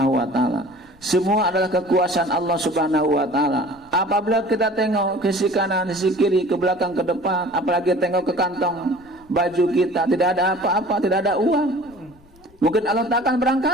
Wa Taala. Semua adalah kekuasaan Allah Subhanahu Wa Taala. Apabila kita tengok ke sisi kanan, sisi kiri, ke belakang, ke depan, apalagi tengok ke kantong baju kita, tidak ada apa-apa, tidak ada uang, mungkin Allah tak akan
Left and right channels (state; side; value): noise; left; rumble, 28 dB below the sound